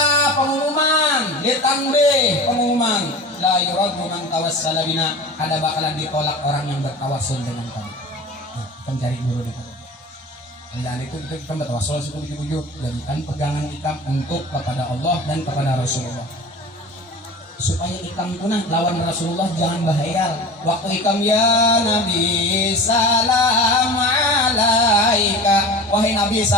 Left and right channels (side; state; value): both; normal; correlation 0.35